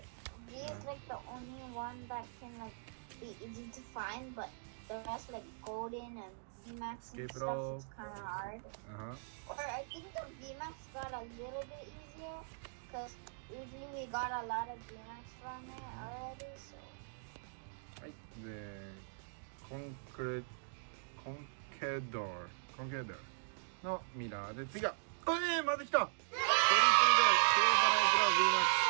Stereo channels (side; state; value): left; silent; digital silence